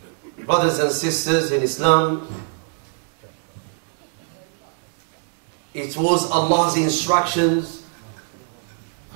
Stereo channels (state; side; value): silent; left; 58 dB below the other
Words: Brothers and sisters in Islam, it was Allah's instructions